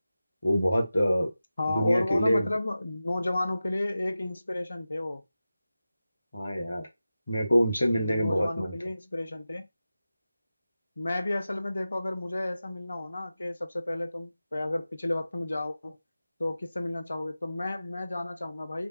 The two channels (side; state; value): both; inverted; correlation -0.94